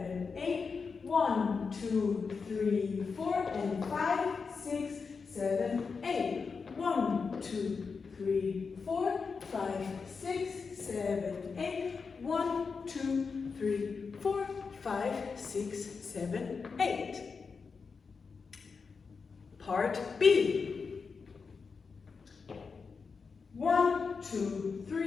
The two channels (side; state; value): right; quieter; 5.1 dB